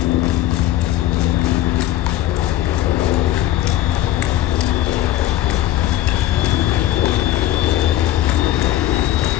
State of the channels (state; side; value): quieter; right; 13.6 dB